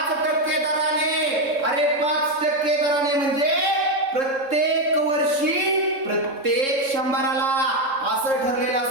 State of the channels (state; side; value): late; left; 3.7 ms